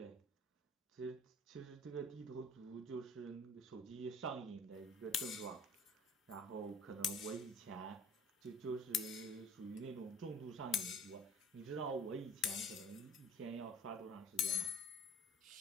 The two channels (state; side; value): normal; both; correlation 0.48